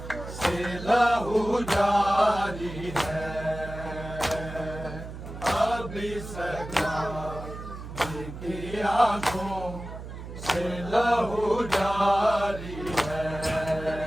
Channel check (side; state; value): right; noise; hum, 11 dB below the sound